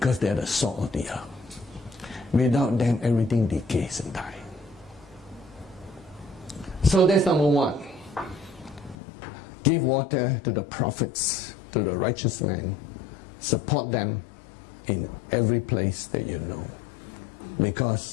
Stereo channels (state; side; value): drops out; right; at 9.0 s